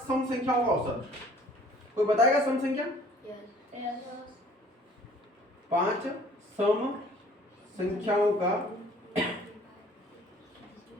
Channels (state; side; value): normal; both; correlation 0.54